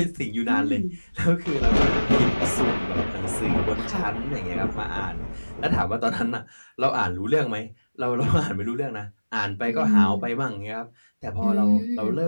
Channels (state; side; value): inverted; both; correlation -1.00